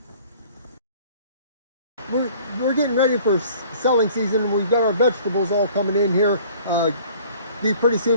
We're getting ready for selling season, and we've got our vegetables all coming in here. Pretty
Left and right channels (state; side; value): inverted; both; correlation -0.51